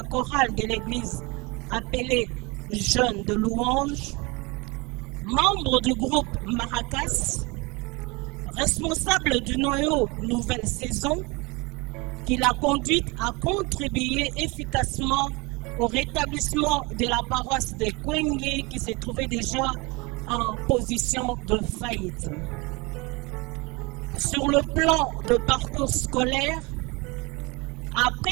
chorale de l'église appelée Jeunes de louange, membre du groupe Maracas, responsable du noyau Nouvelle Saison, qui l'a conduite à contribuer efficacement au rétablissement de la paroisse de Kwengue qui se trouvait déjà en position de faillite. Sur le plan de parcours scolaire,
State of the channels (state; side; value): quieter; left; 26.6 dB